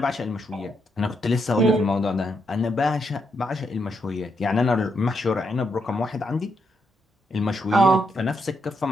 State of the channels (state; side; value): normal; both; correlation 0.79